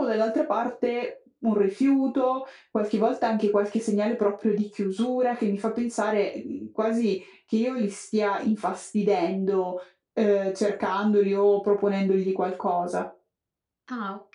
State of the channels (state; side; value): identical; both; correlation 1.00